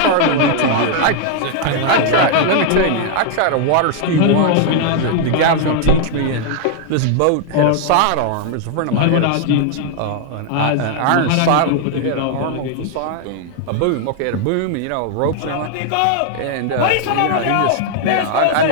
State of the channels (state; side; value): different; both; correlation 0.00